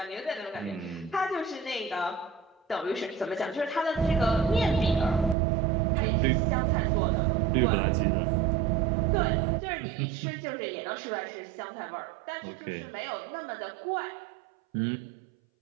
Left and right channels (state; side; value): drops out; left; at 5.4 s